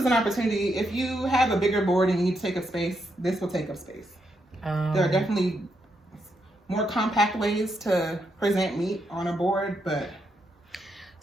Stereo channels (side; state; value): both; normal; correlation 0.80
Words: an opportunity, if you have a bigger board and you need to take up space, this will take up space. There are definitely more compact ways to present meat on a board, but...